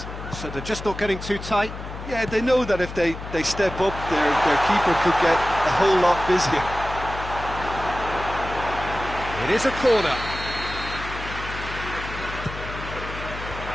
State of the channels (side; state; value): left; noise; hum, 10 dB below the sound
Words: So they're just not getting too tight. Yeah, they know that if they step up, their keeper could get a whole lot busier. It is a corner.